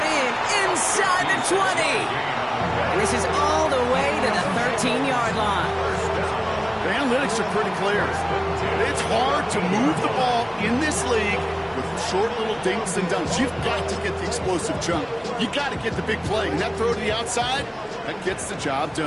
in inside the 20. And this is all the way to the 13-yard line. The analytics are pretty clear. It's hard to move the ball in this league with short little dinks and dunks. You've got to get the explosive jump. You got to get the big play. And that throw to the outside, that gets the job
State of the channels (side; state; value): both; identical; correlation 1.00